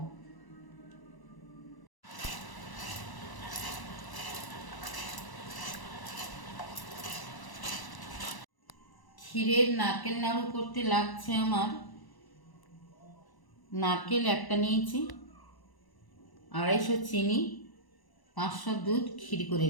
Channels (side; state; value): right; late; 1.0 ms